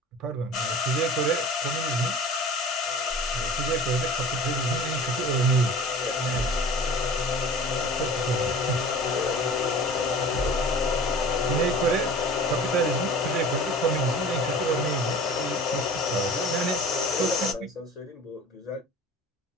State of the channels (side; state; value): both; normal; correlation 0.41